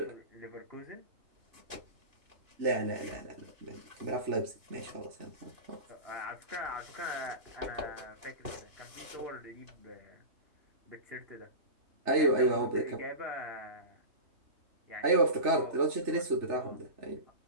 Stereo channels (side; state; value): left; late; 3.3 ms